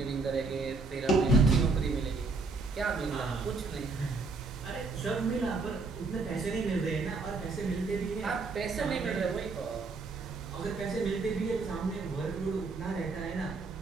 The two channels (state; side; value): quieter; left; 3.9 dB